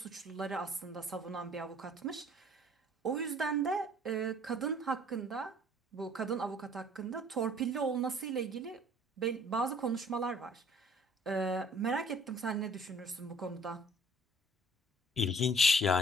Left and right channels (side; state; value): both; normal; correlation 0.54